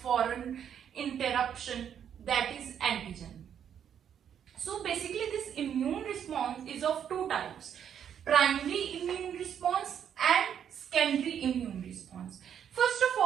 foreign interruption, that is antigen. So basically this immune response is of two types: primary immune response and secondary immune response. First of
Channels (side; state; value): left; quieter; 8.8 dB